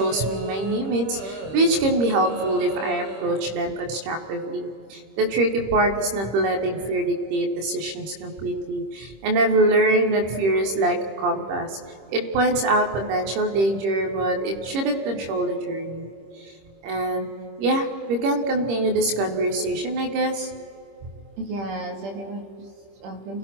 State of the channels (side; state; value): left; late; 26 ms